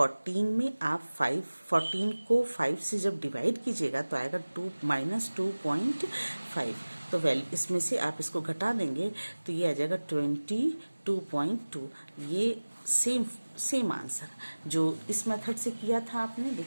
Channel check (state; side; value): inverted; both; correlation -1.00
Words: में आप 14 को 5 से जब डिवाइड कीजिएगा तो आएगा 2 -2.5। तो वैल्यू इसमें से आप इसको घटा देंगे तो ये आ जाएगा 22.2। ये सेम आंसर जो इस मेथड से किया था आपने।